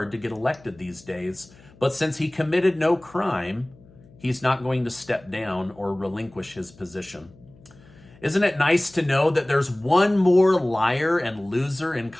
to get elected these days. But since he committed no crime, he's not going to step down or relinquish his position. Isn't it nice to know that there's one more liar and loser in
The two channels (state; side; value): noise; left; hum, 25 dB below the sound